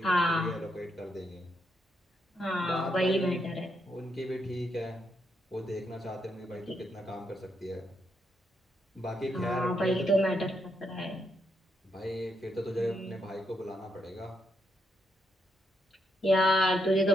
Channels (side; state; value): both; normal; correlation 0.79